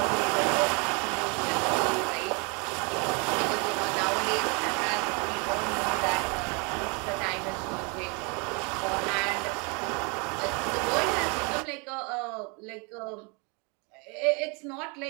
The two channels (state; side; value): quieter; left; 32.3 dB